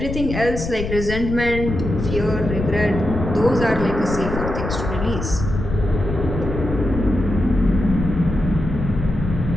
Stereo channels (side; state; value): left; noise; rumble, 5 dB below the sound